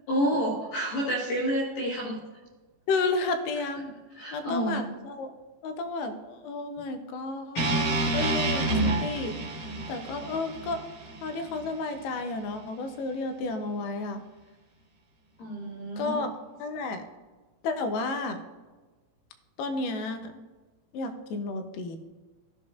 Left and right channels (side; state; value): right; late; 18 ms